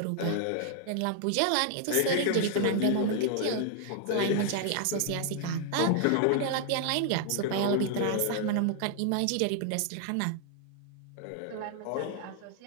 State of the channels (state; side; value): different; both; correlation 0.00